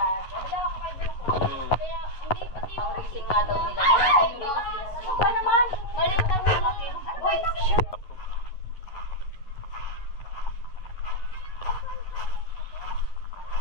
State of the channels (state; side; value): late; right; 11 ms